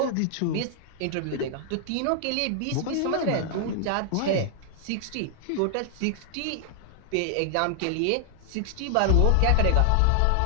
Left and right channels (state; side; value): different; both; correlation 0.00